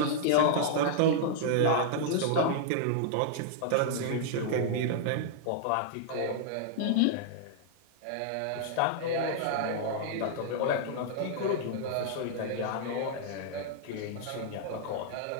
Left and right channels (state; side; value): different; both; correlation -0.01